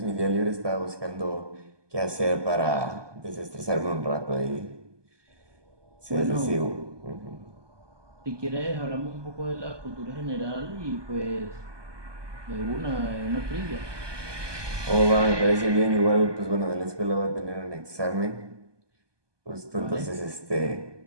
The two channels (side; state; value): left; late; 1.2 ms